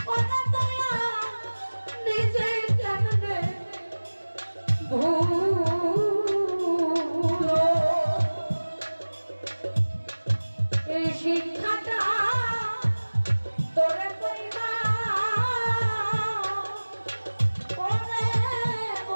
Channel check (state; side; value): inverted; both; correlation -1.00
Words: ওরে দয়া নিজে কেমনে ভুলো এই শিক্ষাটা তোরে কইবা ওরে